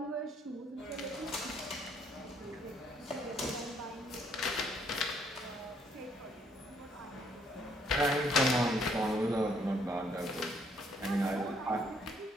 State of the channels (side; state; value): both; normal; correlation 0.67